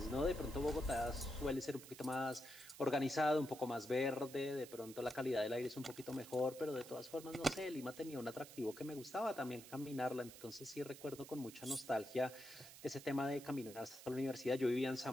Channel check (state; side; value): noise; right; hiss, 15 dB below the sound